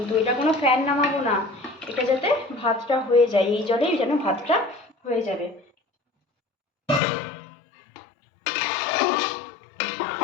এটা কোনো ফ্যান নামাবো না, এটা যাতে ভাতটা হয়ে যায়, এই জলেই যেন ভাতটা হয়ে যাবে।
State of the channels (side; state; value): right; drops out; at 7.0 s